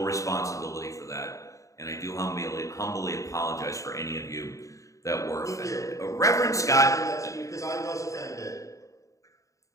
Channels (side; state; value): right; late; 0.16 ms